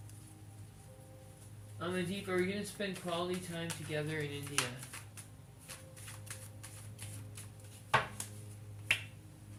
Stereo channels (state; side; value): identical; both; correlation 1.00